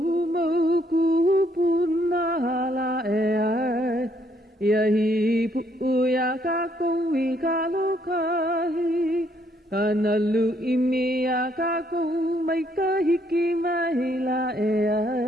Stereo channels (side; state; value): both; normal; correlation 0.70